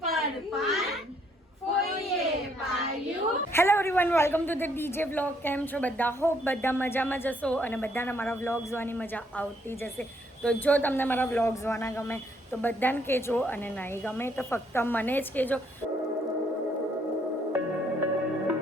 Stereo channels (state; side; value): normal; both; correlation 0.69